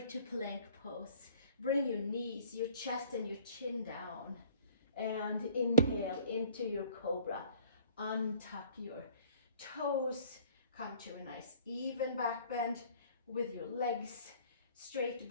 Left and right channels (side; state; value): both; inverted; correlation -0.52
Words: plank pose. Bring your knees, your chest and your chin down, and inhale into your cobra. Untuck your toes, come to a nice even back bend with your legs straight